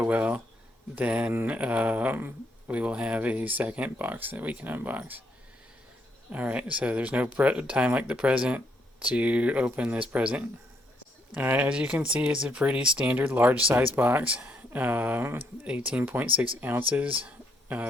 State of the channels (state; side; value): normal; both; correlation 0.74